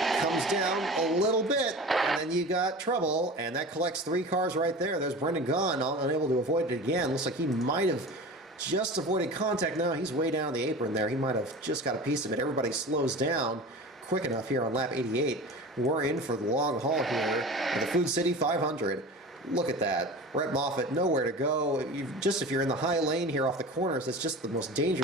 Comes down a little bit, and then you got trouble. And that collects 3 cars right there. There's Brendan Gaughan, unable to avoid it again. Looks like he might have just avoided contact. No, he's way down the apron there. He might have just got a piece of it. Everybody slows down quick enough here on lap 88. We're in for the long haul here in the Food City 500. Look at that. Brett Moffitt, nowhere to go. If you're in the high lane here off the corners, it's just the most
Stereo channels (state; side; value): normal; both; correlation 0.34